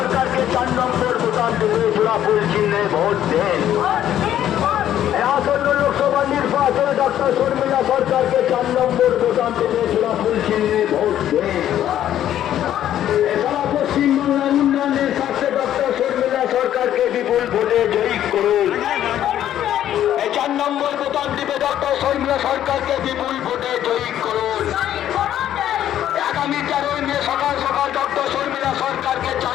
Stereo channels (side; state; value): right; quieter; 11.4 dB